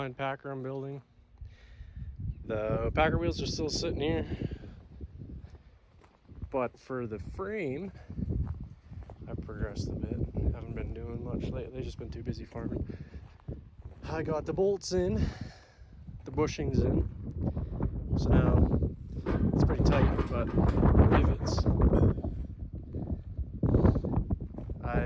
Packer I'm building. The Packer wheels are still sitting here, but for the frame, I've progressed a bit. Haven't been doing much lately, just been too busy farming. I got the bolts in, the bushings in, so now it's pretty tight, but rivets. I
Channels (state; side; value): identical; both; correlation 1.00